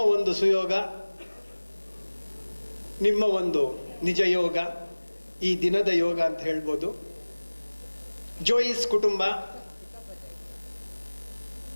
ಒಂದು ಸುಯೋಗ, ನಿಮ್ಮ ಒಂದು ನಿಜ ಯೋಗ, ಈ ದಿನದ ಯೋಗ ಅಂತ ಹೇಳ್ಬೋದು. ಜೋಯಿಸ್ ಕುಟುಂಬ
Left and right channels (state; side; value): inverted; both; correlation -1.00